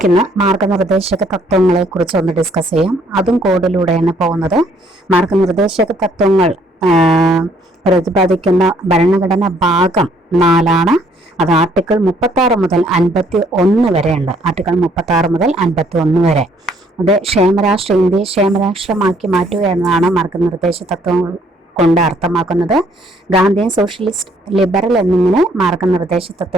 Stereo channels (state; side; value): normal; both; correlation 0.64